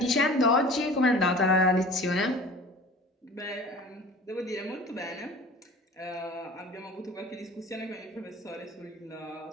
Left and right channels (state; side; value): normal; both; correlation 0.42